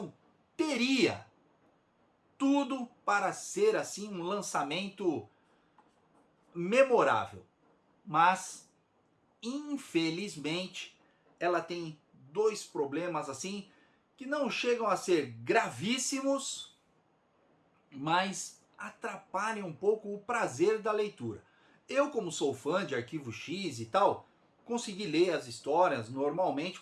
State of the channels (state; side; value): identical; both; correlation 1.00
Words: teria tudo para ser assim um lançamento memorável. Mas, infelizmente, ela tem 2 problemas assim que não chegam a ser gravíssimos, mas atrapalham um pouco o prazer da leitura. Eu, como sou fã de Arquivo X e tal, consegui ler as histórias normalmente,